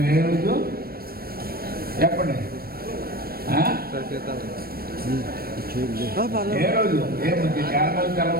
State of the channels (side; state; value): left; late; 0.44 ms